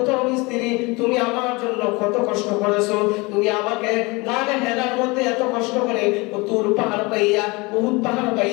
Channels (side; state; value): right; quieter; 25.5 dB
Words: স্ত্রী, তুমি আমার জন্য কত কষ্ট করেছো। তুমি আমাকে গানে হেরার মধ্যে এত কষ্ট করে তুর পাহাড় পাইয়া, উহুদ পাহাড়